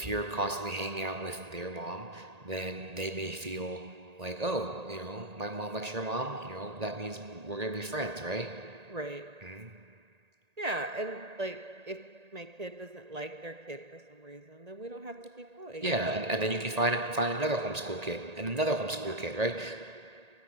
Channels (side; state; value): left; late; 1.8 ms